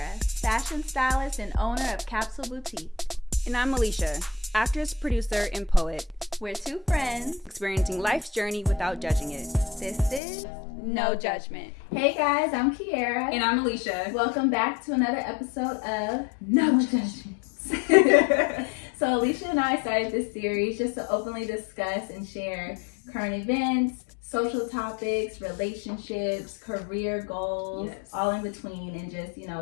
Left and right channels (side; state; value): right; drops out; at 10.2 s